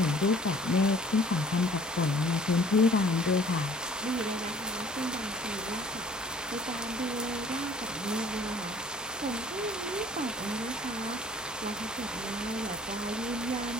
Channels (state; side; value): normal; both; correlation 0.53